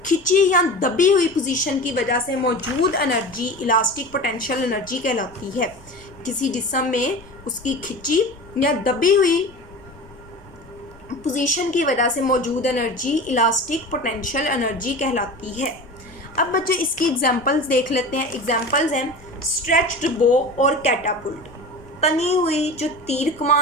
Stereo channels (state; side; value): noise; left; rumble, 24 dB below the sound